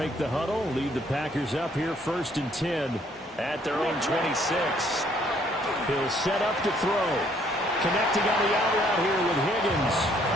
the huddle, lead the Packers up here 1st and 10 at their own 26. He'll set up to throw. Connecting on the out route here with Higgins.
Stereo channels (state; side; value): normal; both; correlation 0.65